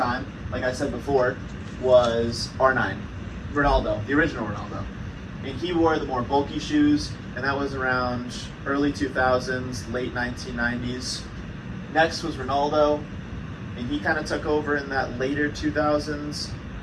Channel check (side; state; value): both; identical; correlation 1.00